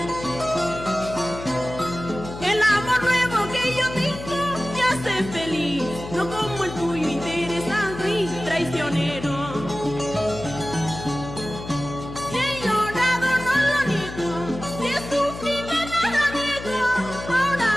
El amor nuevo que yo tengo me hace feliz, no como el tuyo interesado y traicionero. Si he llorado no lo niego, si he sufrido nada niego. Ahora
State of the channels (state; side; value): noise; left; hum, 11 dB below the sound